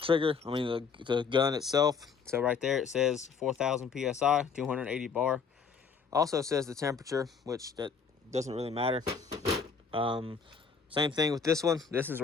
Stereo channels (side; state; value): right; quieter; 5.8 dB